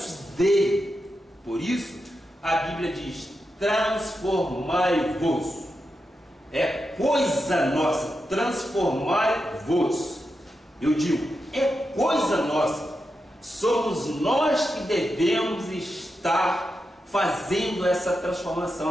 dele. Por isso a Bíblia diz: transformai-vos. É coisa nossa, transformai-vos. Eu digo, é coisa nossa. Somos nós que devemos estar fazendo essa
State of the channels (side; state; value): both; normal; correlation 0.88